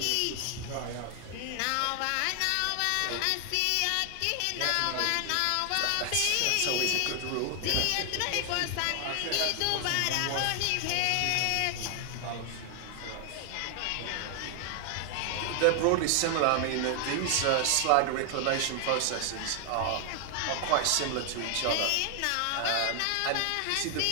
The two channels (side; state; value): both; different; correlation 0.00